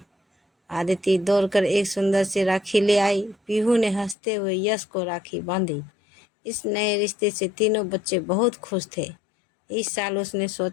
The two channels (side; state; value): right; drops out; at 4.2 s